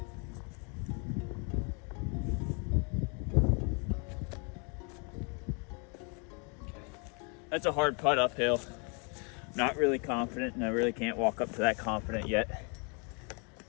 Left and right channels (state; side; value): quieter; right; 35.6 dB